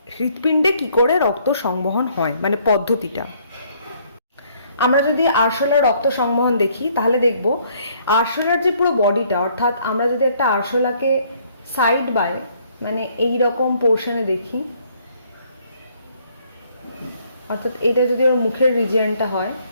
হৃৎপিণ্ডে কি করে রক্ত সংবহন হয়, মানে পদ্ধতিটা। আমরা যদি আরশোলার রক্ত সংবহন দেখি তাহলে দেখব আরশোলার যে পুরো বডিটা, অর্থাৎ আমরা যদি একটা আরশোলাকে সাইড বাই মানে এই রকম পোর্শনে দেখি, অর্থাৎ এটা যদি ওর মুখের রিজিয়নটা হয়,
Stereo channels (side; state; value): both; inverted; correlation -0.65